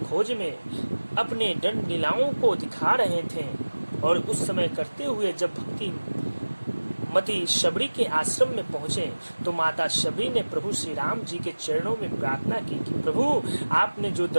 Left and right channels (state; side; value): inverted; both; correlation -1.00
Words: में अपने दंड लीलाओं को दिखा रहे थे और उस समय करते हुए जब भक्ति मती शबरी के आश्रम में पहुंचे तो माता शबरी ने प्रभु श्री राम जी के चरणों में प्रार्थना की कि प्रभु आपने जो